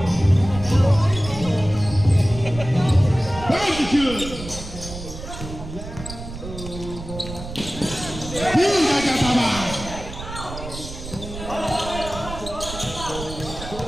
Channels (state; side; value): noise; right; rumble, 11 dB below the sound